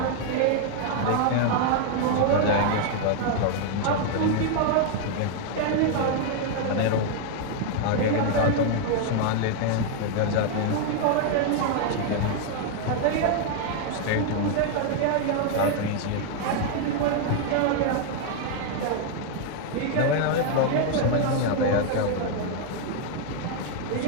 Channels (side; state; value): both; different; correlation 0.00